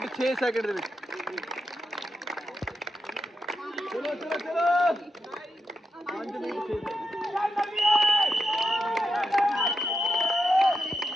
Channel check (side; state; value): both; normal; correlation 0.87